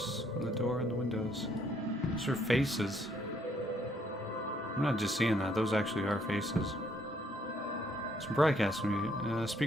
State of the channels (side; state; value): both; normal; correlation 0.68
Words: on the door and the windows. Those are faces. I'm not just seeing that. Those actually are faces. Some broadcast